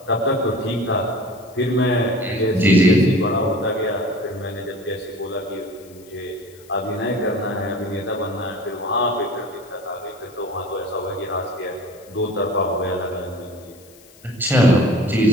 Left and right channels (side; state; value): left; noise; hiss, 26 dB below the sound